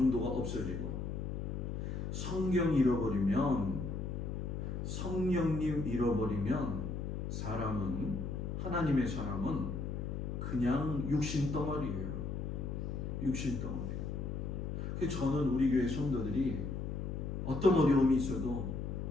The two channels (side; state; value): left; noise; hum, 4 dB below the sound